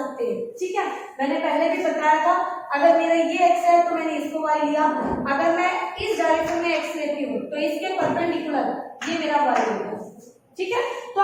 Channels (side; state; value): both; identical; correlation 1.00